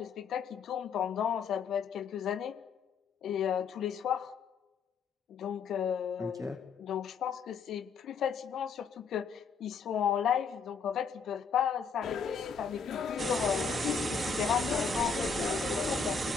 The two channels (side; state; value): right; quieter; 5.6 dB